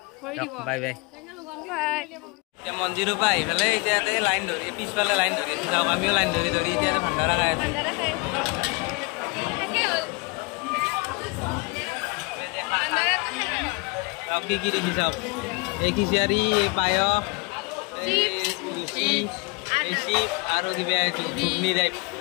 বাই। এতিয়া মন্দিৰৰ পৰা আহি পেলাই এতিয়া লাইন ধৰি, পিছফালে লাইন ধৰি যাওক। আমিও লাইন ধৰি এতিয়া ভাণ্ডাৰা খাই আছোঁ। কি দেখি চাওক, এই খিচাৰি, এই পায়স, আৰু কিবা ঘুগনি টাইপ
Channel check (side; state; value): right; quieter; 28.7 dB